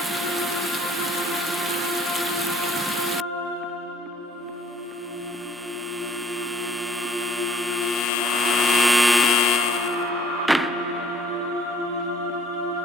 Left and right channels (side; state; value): both; normal; correlation 0.59